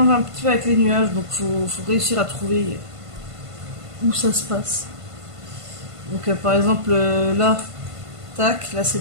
un petit peu avec les nuages, donc faut réussir à trouver où ça se passe. Donc par exemple là, tac, là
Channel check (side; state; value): left; late; 1.5 ms